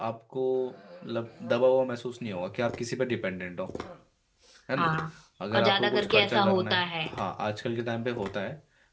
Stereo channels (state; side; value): identical; both; correlation 1.00